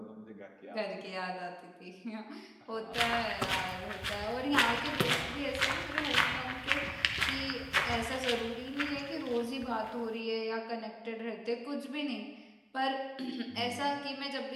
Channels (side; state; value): both; identical; correlation 1.00